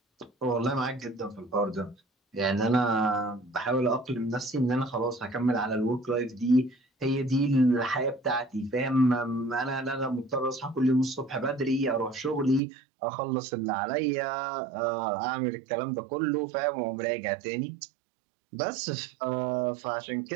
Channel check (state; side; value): drops out; left; at 12.6 s